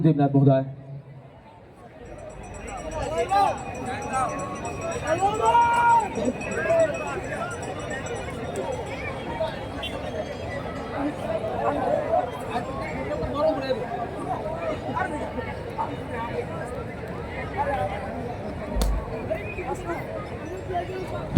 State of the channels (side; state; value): both; identical; correlation 1.00